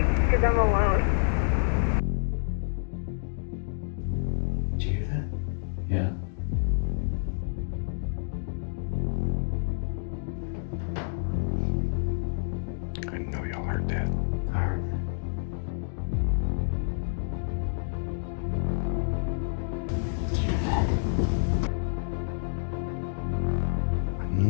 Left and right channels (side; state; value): right; silent; digital silence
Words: because I'm alone. Did you hear that? Yeah. I know y'all heard that. I heard that. Did you hear that? I